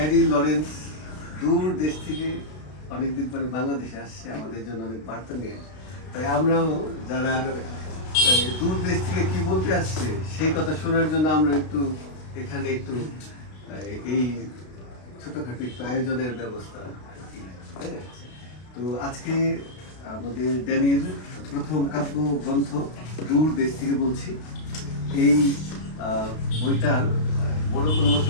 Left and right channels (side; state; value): right; late; 32 ms